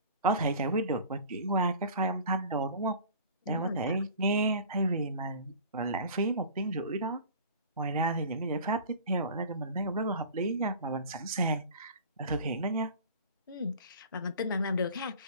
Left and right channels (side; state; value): both; inverted; correlation -0.41